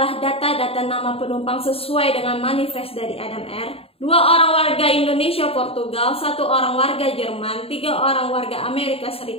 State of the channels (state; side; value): late; right; 0.28 ms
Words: data-data nama penumpang sesuai dengan manifest dari Adam Air. 2 orang warga Indonesia Portugal, 1 orang warga Jerman, 3 orang warga Amerika